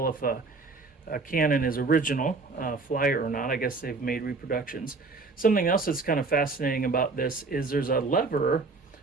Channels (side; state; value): left; quieter; 3.9 dB